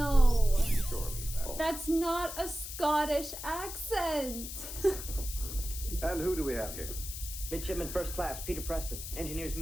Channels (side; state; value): left; noise; hiss, 8 dB below the sound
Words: Surely. That's not a Scottish accent. And who do we have here? Midshipman First Class, Peter Preston, engineer's